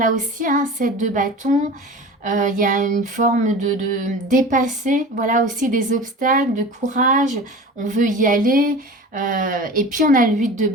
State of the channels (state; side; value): normal; both; correlation 0.36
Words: aussi, hein, 7 de bâton, il y a une forme de dépasser, voilà aussi des obstacles, de courage, on veut y aller. Et puis on a le 8 de